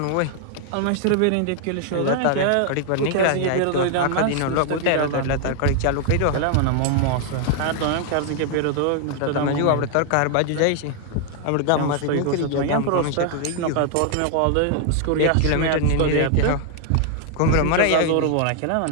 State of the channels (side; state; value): both; different; correlation 0.00